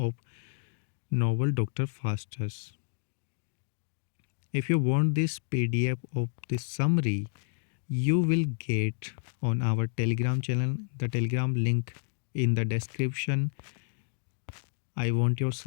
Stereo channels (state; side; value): silent; right; digital silence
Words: novel Dr. Faustus. If you want this PDF of this summary, you will get on our Telegram channel, the Telegram link in the description. I want your